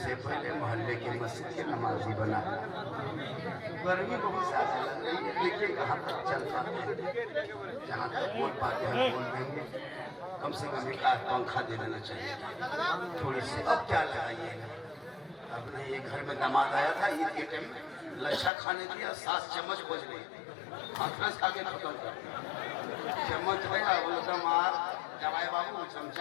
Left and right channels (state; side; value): drops out; right; at 18.5 s